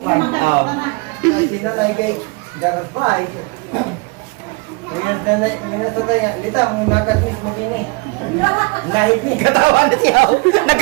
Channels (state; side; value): quieter; left; 28.3 dB